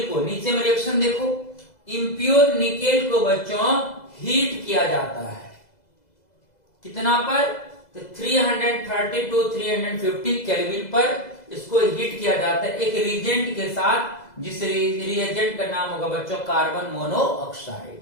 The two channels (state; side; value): late; right; 2.0 ms